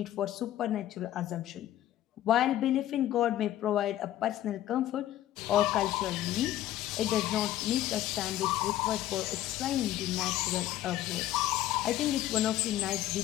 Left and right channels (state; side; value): quieter; right; 13.4 dB